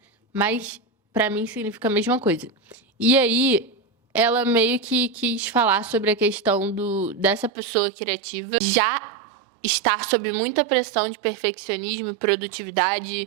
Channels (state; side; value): drops out; left; at 7.5 s